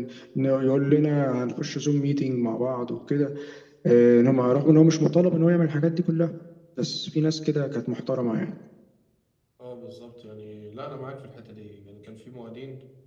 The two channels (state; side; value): identical; both; correlation 1.00